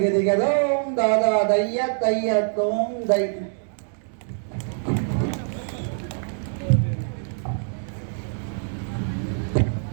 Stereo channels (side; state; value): left; silent; digital silence